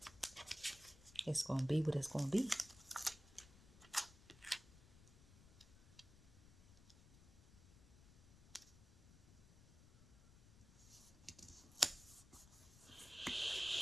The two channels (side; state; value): left; noise; rumble, 20 dB below the sound